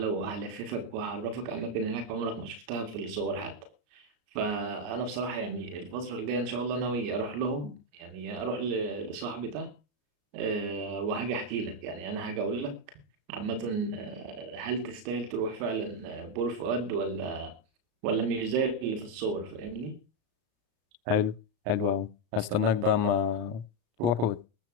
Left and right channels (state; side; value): late; left; 34 ms